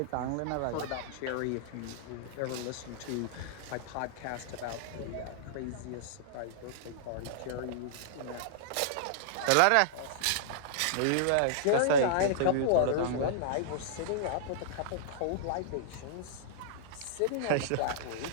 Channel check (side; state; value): both; different; correlation -0.02